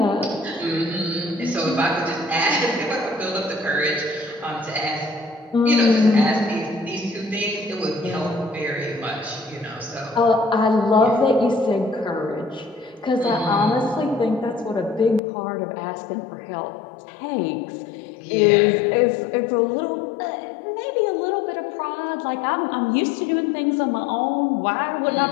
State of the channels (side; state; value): right; drops out; at 15.2 s